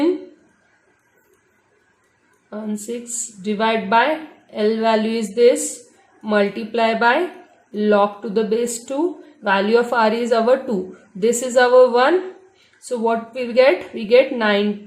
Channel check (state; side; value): identical; both; correlation 1.00